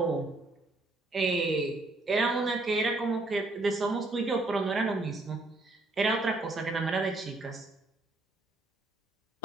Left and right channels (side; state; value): both; normal; correlation 0.70